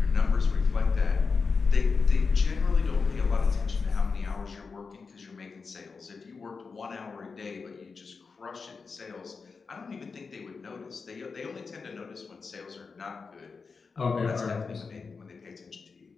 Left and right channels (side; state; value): right; quieter; 4.8 dB